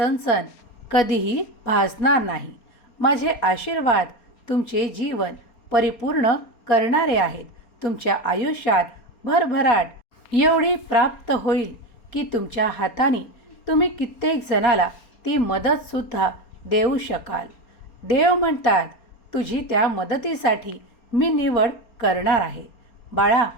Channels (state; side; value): late; right; 4.3 ms